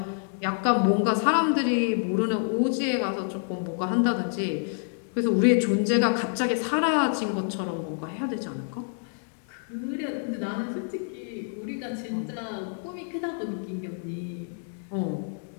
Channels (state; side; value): silent; right; 60 dB below the other